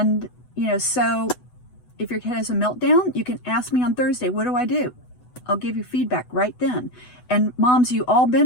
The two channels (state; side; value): late; right; 8.1 ms